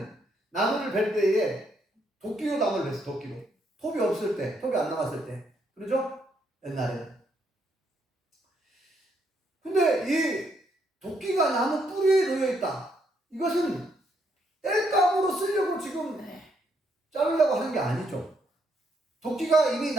나무를 벨 때에 도끼로 나무를 뱄어. 도끼로. 톱이 없을 때, 톱이 안 나왔을 때. 그러죠? 옛날에. 근데 이 도끼가 나무 뿌리에 놓여 있다. 이것은 땔감으로 쓰려고 지금 자르려고 하는 게 아니죠. 도끼가 이미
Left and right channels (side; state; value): both; normal; correlation 0.74